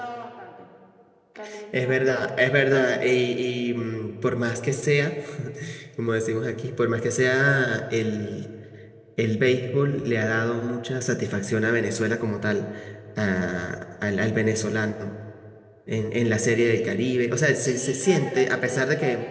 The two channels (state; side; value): identical; both; correlation 1.00